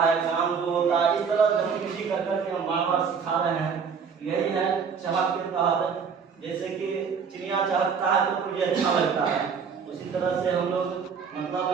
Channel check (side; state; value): left; quieter; 6.2 dB